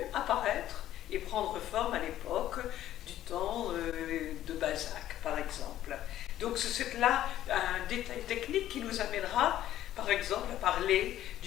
apparaître et prendre forme à l'époque du temps de Balzac par exemple. Donc c'est là un détail technique qui nous amènera par exemple à parler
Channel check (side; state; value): right; quieter; 12.8 dB